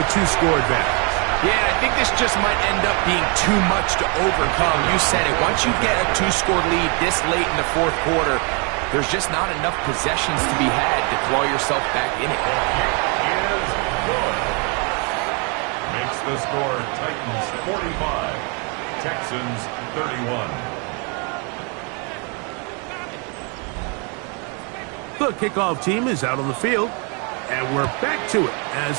a 2-score advantage. Yeah, I think this just might end up being too much to overcome. You said it. Once you get a 2-score lead this late in the fourth quarter, there's just not enough possessions to be had to claw yourself back in it. Is good. Makes the score Titans 45, Texans 31. The kickoff team is out on the field, and we're back to it as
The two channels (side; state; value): left; quieter; 34.8 dB